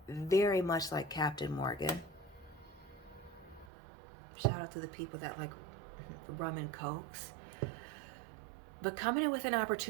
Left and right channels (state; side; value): drops out; left; at 3.7 s